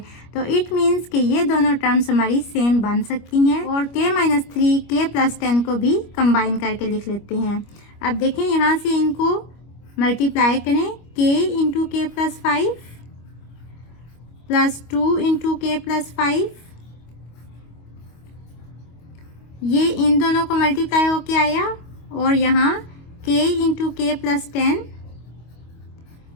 तो इट मीन्स कि ये दोनों टर्म्स हमारी सेम बन सकती हैं और k-3 k प्लस 10 को भी कंबाइन करके लिख लेते हैं। अब देखें यहाँ से इनको मल्टीप्लाई करें, k into k plus 5 plus 2 into k plus 5, ये इन दोनों को मल्टीप्लाई होके आया और यहाँ k into k plus 10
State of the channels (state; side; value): late; right; 25 ms